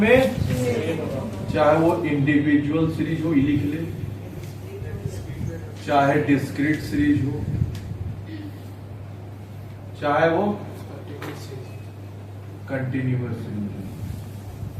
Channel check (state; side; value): identical; both; correlation 1.00